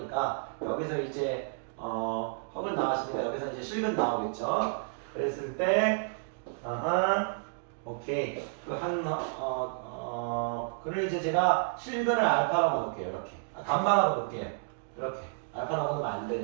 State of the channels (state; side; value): silent; left; digital silence